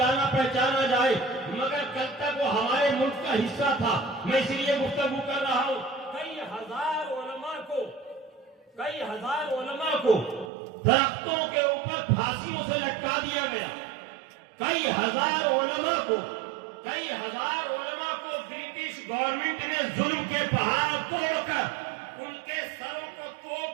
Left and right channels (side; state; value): left; drops out; at 10.5 s